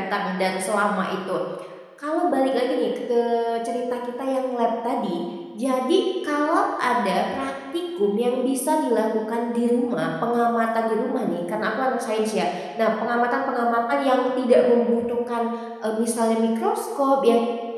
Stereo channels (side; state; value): both; identical; correlation 1.00